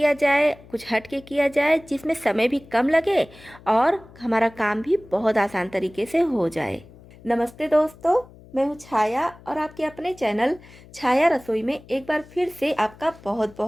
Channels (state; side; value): noise; left; hum, 22 dB below the sound